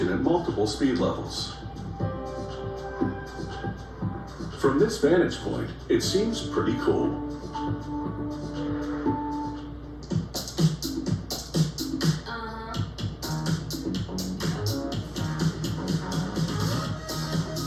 at multiple speed levels. From this vantage point, it seems pretty cool.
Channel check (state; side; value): identical; both; correlation 1.00